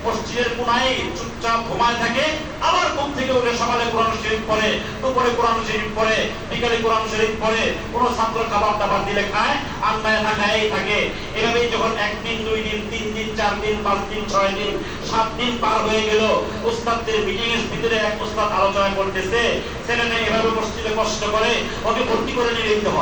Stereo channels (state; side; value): identical; both; correlation 1.00